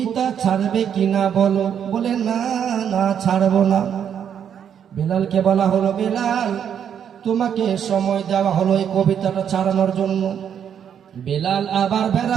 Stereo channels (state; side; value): quieter; left; 8.6 dB